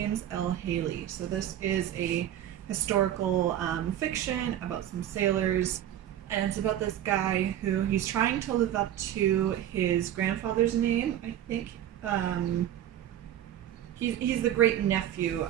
L. Haley. So this is a historical fiction about some sailors, and it's about this guy who he's trying to live up to his grandfather's name. I think he's the great nephew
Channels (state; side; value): quieter; left; 11.4 dB